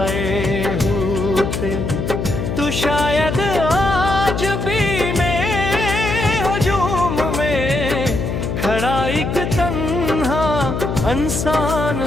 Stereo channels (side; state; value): left; noise; hum, 3 dB below the sound